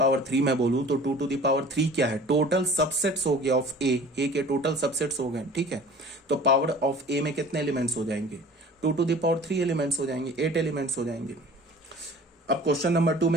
3 मैं बोलूं तो 2 टू द पावर 3 क्या है, टोटल सबसेट्स हो गया ऑफ ए के टोटल सबसेट्स हो गए। ठीक है, तो पावर ऑफ ए में कितने एलिमेंट्स हो जाएंगे, 2 टू द पावर 3 एलिमेंट्स हो जाएंगे, 8 एलिमेंट्स हो जाएंगे। अब क्वेश्चन नंबर 2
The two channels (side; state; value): both; normal; correlation 0.45